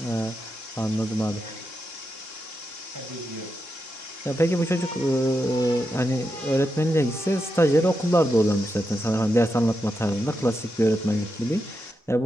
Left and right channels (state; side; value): normal; both; correlation 0.86